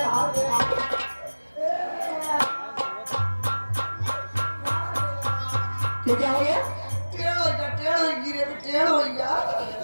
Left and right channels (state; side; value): inverted; both; correlation -1.00